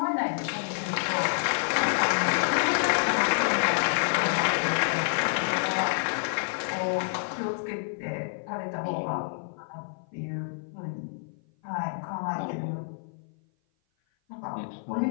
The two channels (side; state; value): right; silent; 56 dB below the other